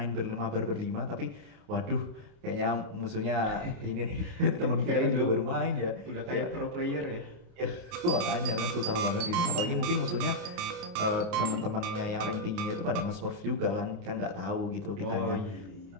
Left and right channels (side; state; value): left; late; 28 ms